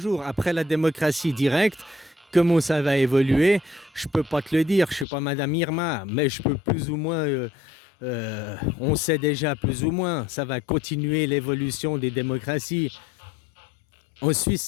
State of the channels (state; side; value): drops out; right; at 5.1 s